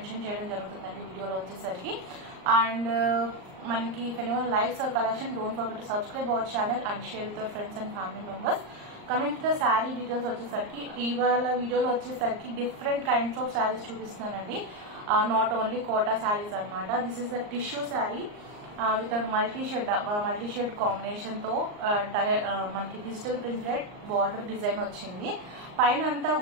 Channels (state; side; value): late; left; 39 ms